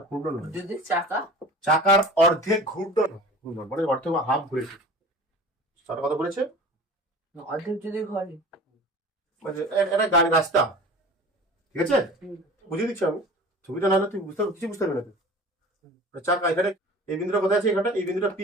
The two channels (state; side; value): normal; both; correlation 0.40